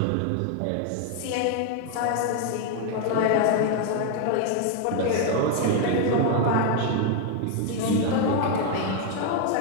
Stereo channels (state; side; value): different; both; correlation 0.00